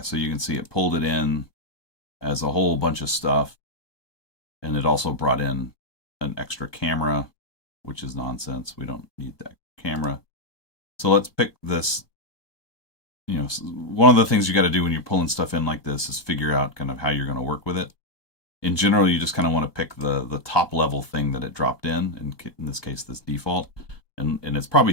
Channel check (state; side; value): late; right; 1.2 ms